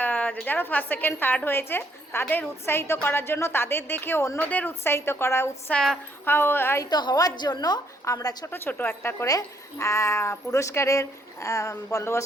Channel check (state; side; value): normal; both; correlation 0.69